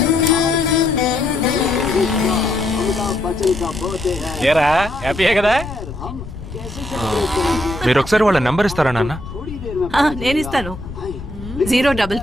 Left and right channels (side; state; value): left; noise; rumble, 11 dB below the sound